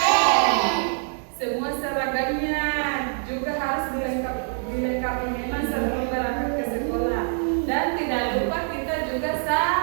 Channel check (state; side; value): silent; left; 62 dB below the other